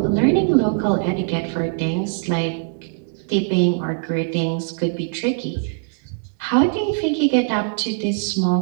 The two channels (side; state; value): left; silent; digital silence